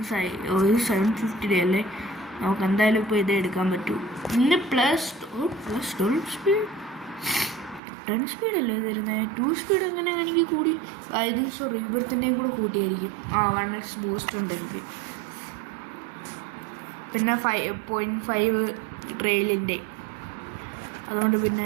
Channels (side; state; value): left; drops out; at 7.8 s